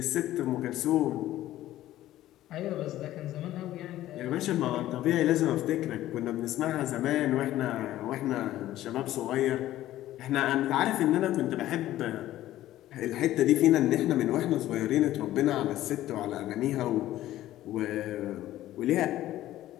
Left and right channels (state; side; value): quieter; right; 14.2 dB